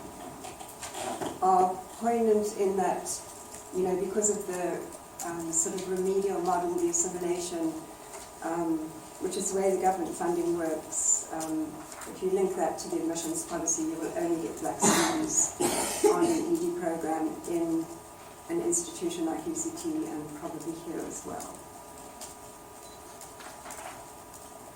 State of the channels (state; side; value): identical; both; correlation 1.00